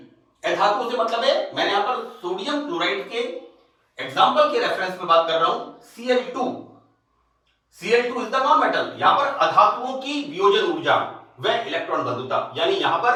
अधातुओं से मतलब है, मैंने यहां पर सोडियम क्लोराइड के एग्जांपल के रेफरेंस में बात कर रहा हूं, Cl2 is the non metal. यहां पर अधातुओं की वियोजन ऊर्जा व इलेक्ट्रॉन बंधुता, यानी यहां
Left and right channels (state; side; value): identical; both; correlation 1.00